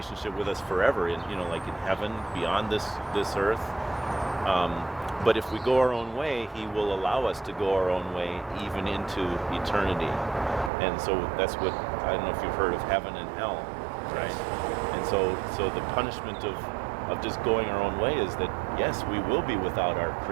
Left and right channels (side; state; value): left; drops out; at 10.7 s